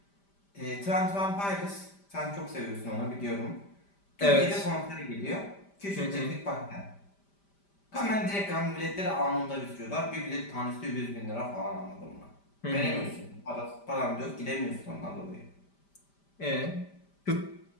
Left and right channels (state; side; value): late; right; 5.1 ms